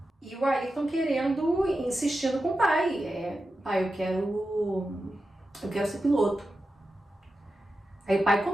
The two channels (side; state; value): both; normal; correlation 0.91